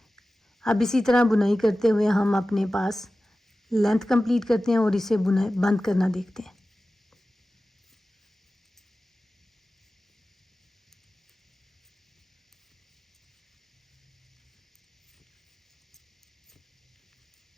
अब इसी तरह बुनाई करते हुए हम अपने पास लेंथ कंप्लीट करते हैं और इसे बुनाई बंद करना देखते हैं।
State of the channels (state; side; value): normal; both; correlation 0.95